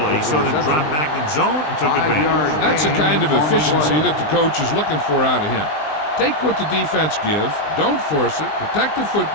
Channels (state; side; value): late; right; 20 ms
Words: He saw them drop back in zone and took advantage. That's the kind of efficiency that the coach is looking for out of him. Take what the defense gives, don't force it, protect the